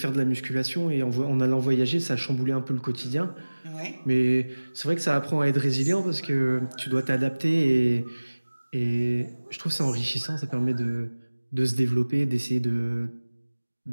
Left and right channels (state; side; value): inverted; both; correlation -1.00